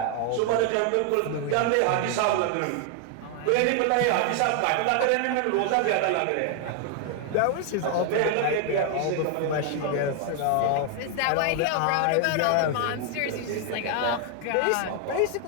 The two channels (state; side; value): different; both; correlation 0.00